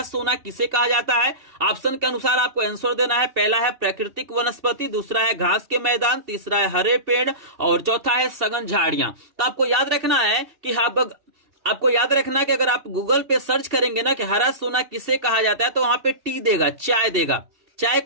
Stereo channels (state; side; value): late; left; 2.7 ms